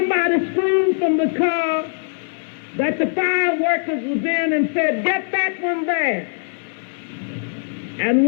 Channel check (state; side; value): silent; right; 65 dB below the other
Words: screamed from the car that the fire workers was in and said, "Get that one there." And